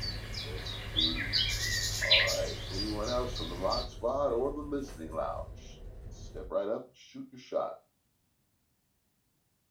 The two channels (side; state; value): both; identical; correlation 1.00